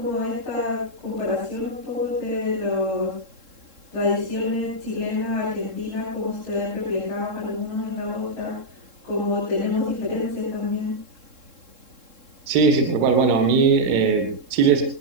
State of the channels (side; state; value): left; late; 3.7 ms